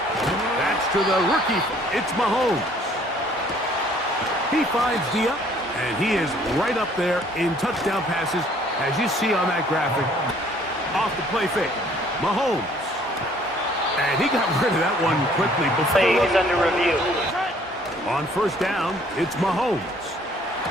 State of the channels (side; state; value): both; normal; correlation 0.59